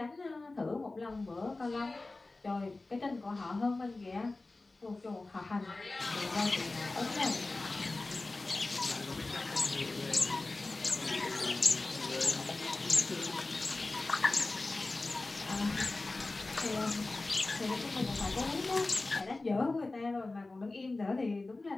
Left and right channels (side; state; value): right; quieter; 3.2 dB